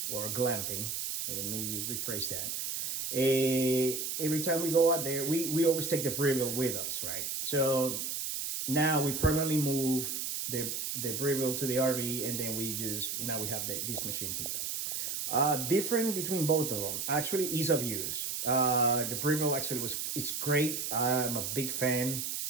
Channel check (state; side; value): noise; right; hiss, 3 dB below the sound